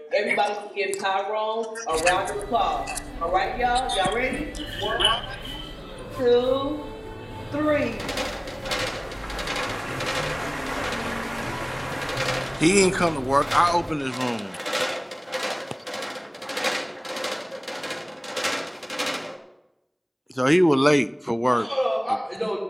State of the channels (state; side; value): identical; both; correlation 1.00